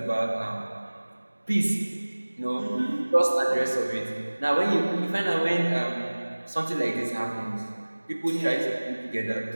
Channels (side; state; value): both; inverted; correlation -1.00